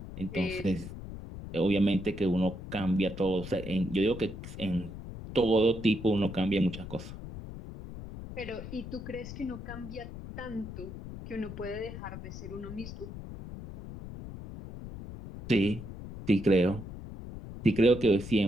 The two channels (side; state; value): left; noise; rumble, 11 dB below the sound